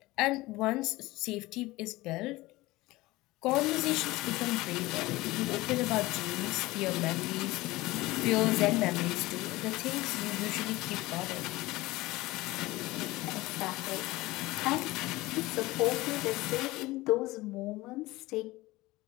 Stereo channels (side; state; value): right; quieter; 19.7 dB